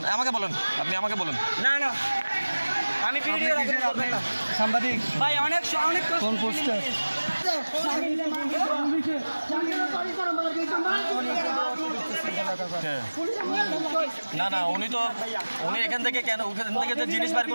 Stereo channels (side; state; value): both; inverted; correlation -1.00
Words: আপনি আমাকে বলেন। না না আমি ভিডিও সাংবাদিক ভাই অনেক কোন পোস্টে না উনি এখান থেকে যে জিনিস বাইর